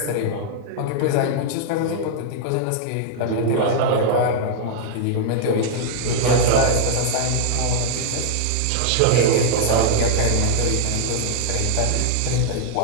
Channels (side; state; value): both; different; correlation -0.01